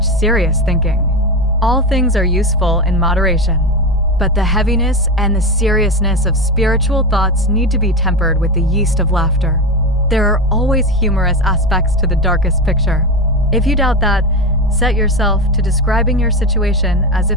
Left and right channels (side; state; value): both; normal; correlation 0.18